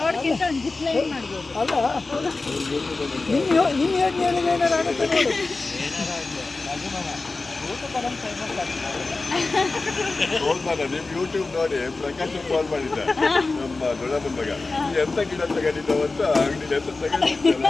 ಒಂದು ಜಿಪ್ ಲೈನ್ ಮಾಡ್ಬೋದು. ನಿಮ್ ಯೂಟ್ಯೂಬ್ ನೋಡಿ ಪ್ರಕಾಶ್ ಕಾಲ್ ಮಾಡಿದ್ದ, ನಮ್ಮ ದೊಡ್ಡಮ್ಮನ ಮಗ ಎಂತ ಗಿಡ ತಗೊಂಡಿದ್ದಾವ ಅಂತ ಅಂಗಡಿ ಎಂತ ತಗೊಂಡಿದ್ದಲ್ಲ.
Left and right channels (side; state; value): right; quieter; 3.6 dB